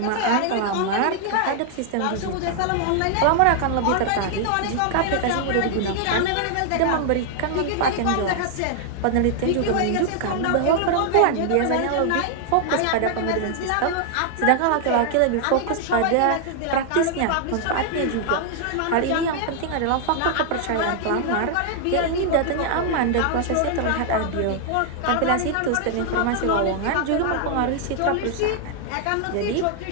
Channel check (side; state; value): both; different; correlation 0.00